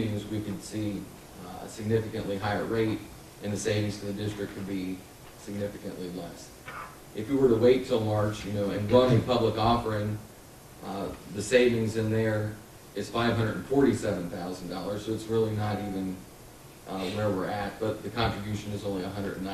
we could see a significantly higher rate, and the savings to the district could be significantly less. If we were to wait till March, and run a public offering, the savings in there is $547,000, so it's really not even where we're at, but the contribution is only $195,000.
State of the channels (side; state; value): both; identical; correlation 1.00